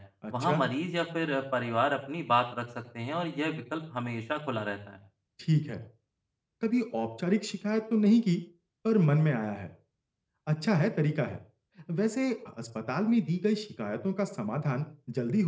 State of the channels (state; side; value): identical; both; correlation 1.00